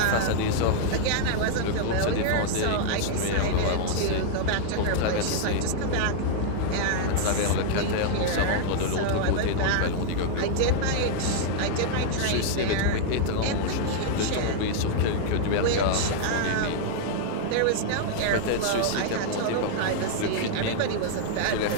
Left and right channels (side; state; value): both; different; correlation -0.01